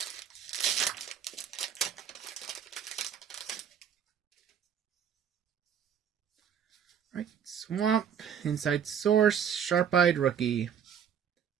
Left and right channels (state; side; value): quieter; left; 8.2 dB